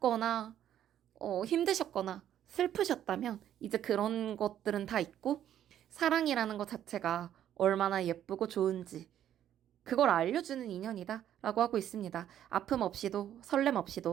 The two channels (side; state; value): left; quieter; 10.9 dB